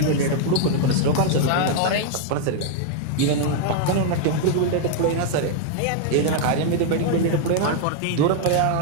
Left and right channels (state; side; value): different; both; correlation 0.00